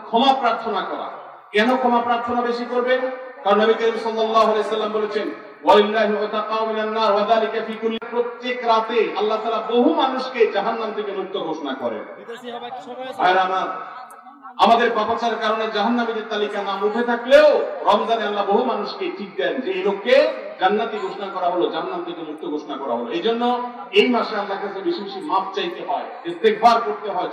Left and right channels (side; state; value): both; identical; correlation 1.00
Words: ক্ষমা প্রার্থনা করা। কেন ক্ষমা প্রার্থনা বেশি করবেন? কারণ নবী করিম সাল্লাল্লাহু আলাইহি সাল্লাম বলেছেন, ওয়ালিল্লাহি ওয়াতাকাউ মিনান নার ওয়া যালিকা ফি কুল্লি, প্রত্যেক রাতে আল্লাহ তাআলা বহু মানুষকে জাহান্নাম থেকে মুক্ত ঘোষণা করেন। আর আমাদের পাপাচারের কারণে জাহান্নামীদের তালিকা নাম উঠে থাকলেও রমজানে আল্লাহ বহু মানুষকে ঠিক দেন যে এই লোককে জান্নাতি ঘোষণা করা হলো, জাহান্নাম থেকে মুক্ত ঘোষণা করা হলো। এই জন্য এই মাসে আল্লাহর কাছে বেশি বেশি মাফ চাইতে হয়, ইস্তেগফার করতে হয়,